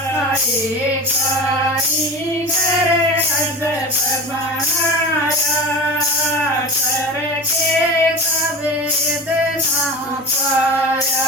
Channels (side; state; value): both; normal; correlation 0.31